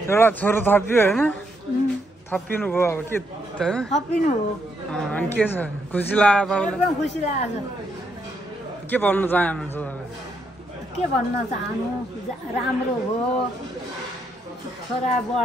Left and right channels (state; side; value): normal; both; correlation 0.77